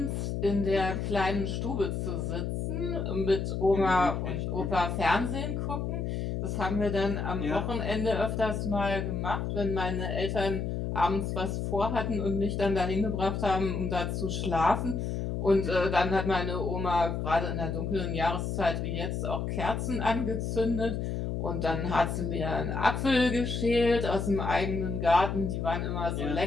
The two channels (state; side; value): noise; left; hum, 2 dB below the sound